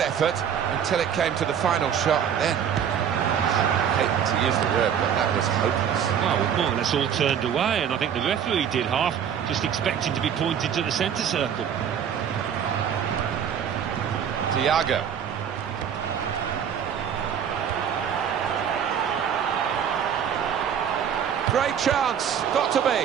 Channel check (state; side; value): quieter; left; 8.4 dB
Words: effort until it came to the final shot, and then, I hate to use the word, but that was hopeless. Well, we've more or less all turned away, and I think the referee did half, just expecting to be pointed to the centre circle. Thiago. Great chance, got to